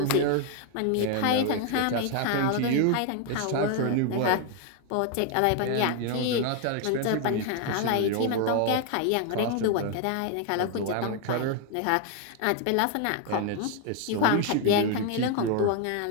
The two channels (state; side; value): different; both; correlation 0.01